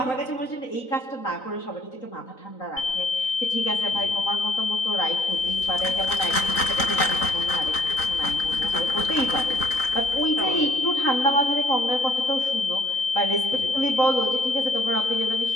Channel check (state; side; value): late; right; 3.9 ms